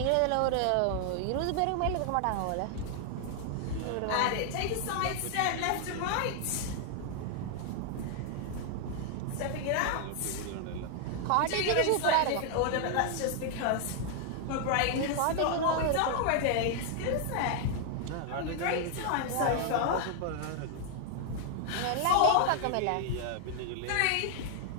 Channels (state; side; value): different; both; correlation 0.00